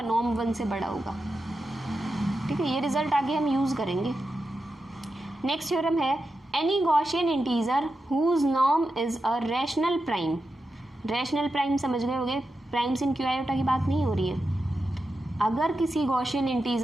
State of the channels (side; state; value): both; normal; correlation 0.89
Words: नॉर्म 1 से बड़ा होगा। ठीक है, ये रिजल्ट आगे हम यूज़ करेंगे। नेक्स्ट थ्योरम है any Gaussian integer whose norm is a rational prime. Rational prime समझ गए होंगे, प्राइम्स इन क्यू आयोटा की बात नहीं हो रही है। अगर किसी गॉसियन